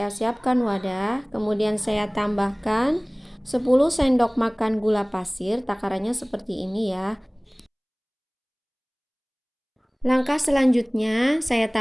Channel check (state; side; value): identical; both; correlation 1.00